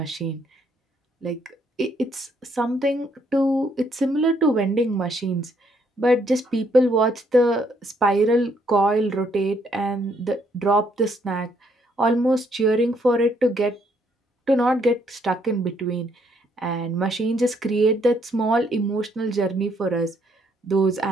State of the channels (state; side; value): normal; both; correlation 0.70